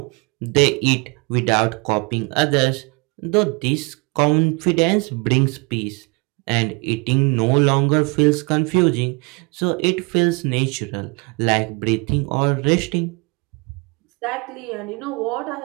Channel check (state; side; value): quieter; left; 29.9 dB